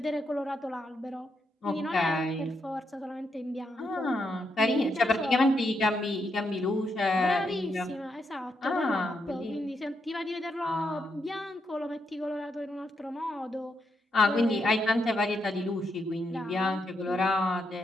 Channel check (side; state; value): both; normal; correlation 0.81